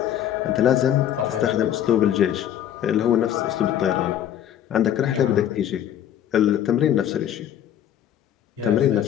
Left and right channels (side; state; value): right; quieter; 10.4 dB